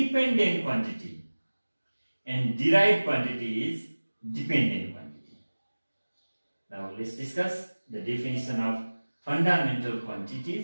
quantity, and derived quantity is dependent quantity. Now let's discuss the definition of fundamental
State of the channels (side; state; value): both; inverted; correlation -1.00